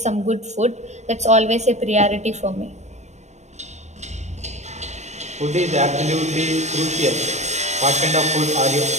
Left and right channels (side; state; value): left; late; 0.33 ms